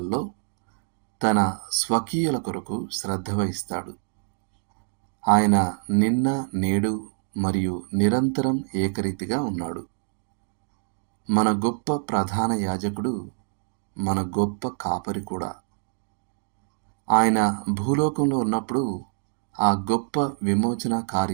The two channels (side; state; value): left; silent; digital silence